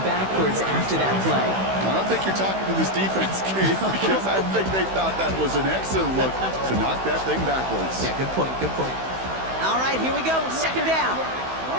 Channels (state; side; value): late; left; 16 ms